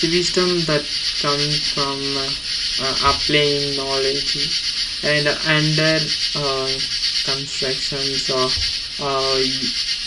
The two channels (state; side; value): identical; both; correlation 1.00